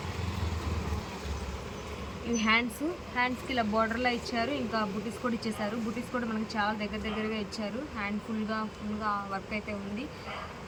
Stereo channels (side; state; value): both; identical; correlation 1.00